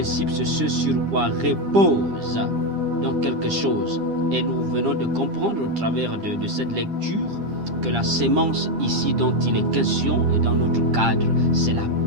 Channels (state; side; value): late; left; 10 ms